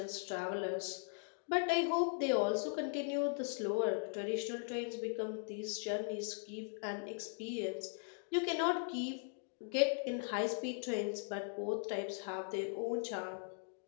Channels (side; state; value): right; silent; 52 dB below the other